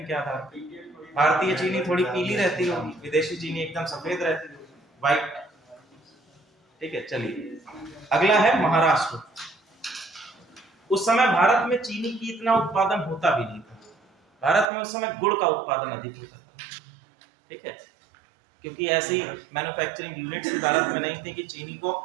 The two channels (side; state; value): left; drops out; at 14.7 s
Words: के आधार पर भारतीय चीनी थोड़ी पीली रहती होगी, विदेशी चीनी एकदम सफेद रहती होगी, व्हाइट। ठीक है, चलिए अगला है महाराष्ट्र। उस समय भारत में चीनी की इतना उत्पादन होता भी नहीं था। भारत में उस समय गुड़ का उत्पादन अधिक होता था। ठीक है, क्योंकि ऐसी मैन्युफैक्चरिंग यूनिट्स भारत में नहीं थी कि चीनी को